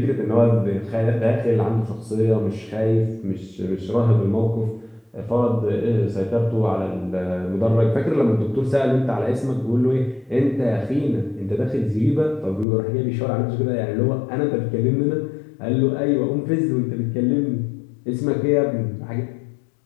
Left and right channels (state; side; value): drops out; right; at 12.7 s